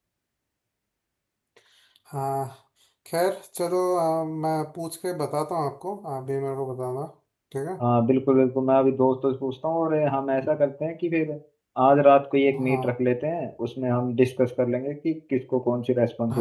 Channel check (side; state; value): both; identical; correlation 1.00